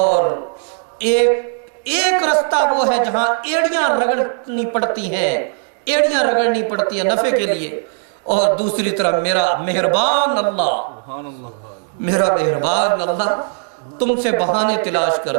ایک رستہ وہ ہے جہاں ایڑیاں رگڑنی پڑتی ہیں، ایڑیاں رگڑنی پڑتی ہیں نفع کے لیے، اور دوسری طرف میرا مہربان اللہ، میرا مہربان اللہ تم سے بہانے تلاش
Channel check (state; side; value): silent; left; 58 dB below the other